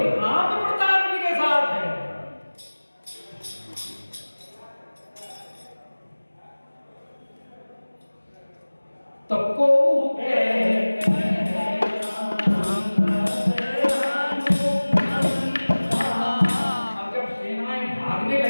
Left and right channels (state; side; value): inverted; both; correlation -1.00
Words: प्रताप जी के साथ है। तब को अब जब सेनाएं भागने